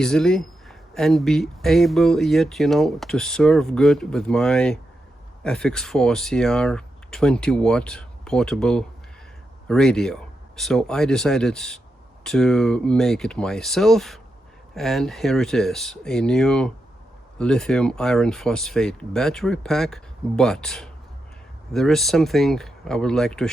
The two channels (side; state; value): both; normal; correlation 0.86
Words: and be able yet, to serve good with my FX-4CR 20-watt portable radio. So I decided to make it myself, and here it is, a new lithium iron phosphate battery pack. But there is something I would like to